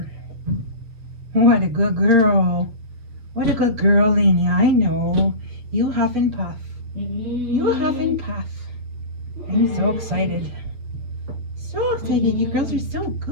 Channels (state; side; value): late; left; 8.2 ms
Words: What a good girl. What a good girl, Lainey. I know. You huff and puff. You huff and puff. I'm so excited. So excited. You girls are so